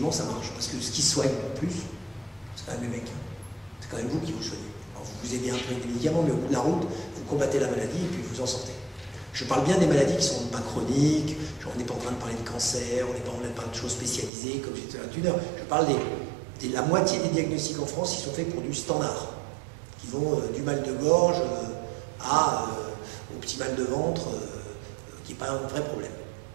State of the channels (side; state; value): left; drops out; at 14.3 s